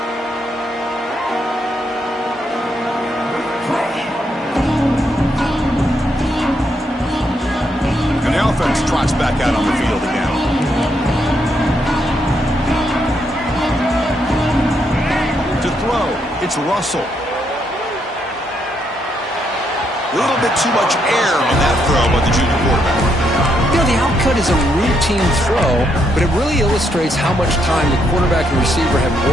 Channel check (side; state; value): both; normal; correlation 0.77